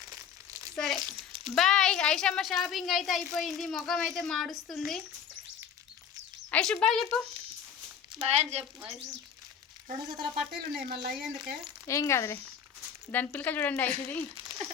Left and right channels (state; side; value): quieter; right; 7.8 dB